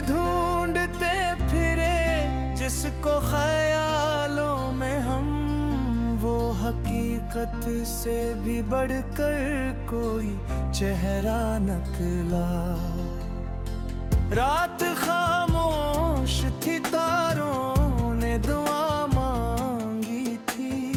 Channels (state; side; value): identical; both; correlation 1.00